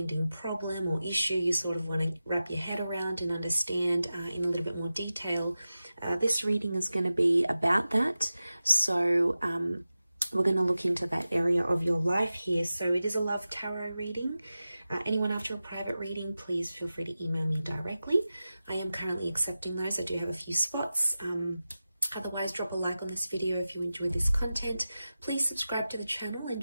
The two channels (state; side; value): inverted; both; correlation -0.94